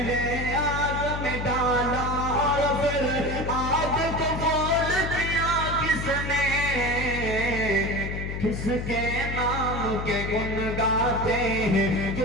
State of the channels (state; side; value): noise; left; hum, 5 dB below the sound